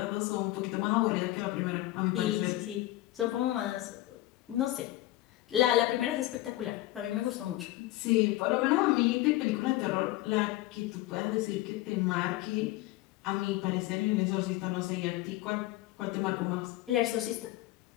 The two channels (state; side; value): quieter; right; 17.0 dB